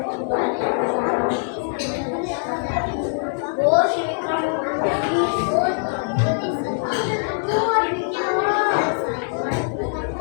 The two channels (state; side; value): silent; right; digital silence